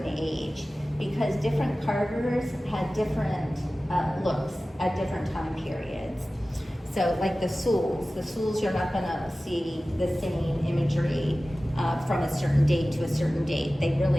age, because different carvers had different looks at different time periods. So like the Souls you're not going to see the same imagery from a certain date to a certain date. They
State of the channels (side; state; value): both; normal; correlation 0.96